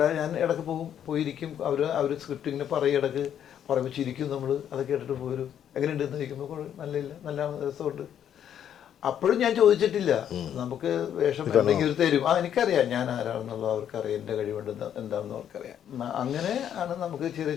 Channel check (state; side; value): quieter; right; 9.6 dB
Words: ഞാൻ ഇടയ്ക്ക് പോയിരിക്കും. അവർ സ്ക്രിപ്റ്റ് ഇങ്ങനെ പറയും, ഇടയ്ക്ക് പറയുമ്പോൾ ചിരിക്കും നമ്മൾ. അത് കേട്ടിട്ട് പോരും, എങ്ങനെയുണ്ടെന്ന് ചോദിക്കുമ്പോൾ നല്ല രസമുണ്ട്. അപ്പോഴും ഞാൻ ചോദിച്ചിട്ടില്ല, നമുക്ക് വേഷം ഉണ്ടെങ്കിൽ ഒരു തരും. എനിക്കറിയാം ഞാൻ ആരാണെന്നുള്ളത് അവർക്കറിയാം, എൻ്റെ കഴിവുണ്ട് എന്താണെന്ന് അവർക്കറിയാം. അങ്ങനെ ആണ് നമുക്ക് ചെറിയ